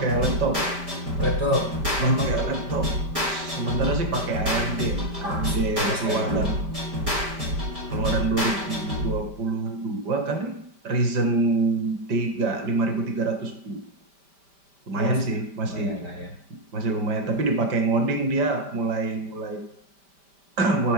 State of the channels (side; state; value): left; late; 5.1 ms